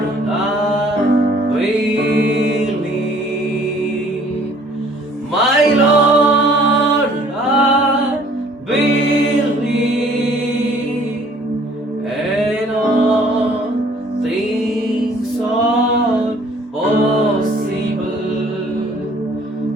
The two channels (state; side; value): normal; both; correlation 0.57